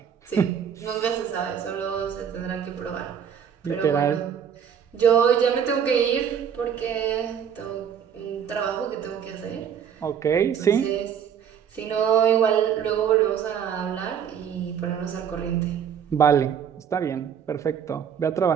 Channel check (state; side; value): quieter; left; 8.1 dB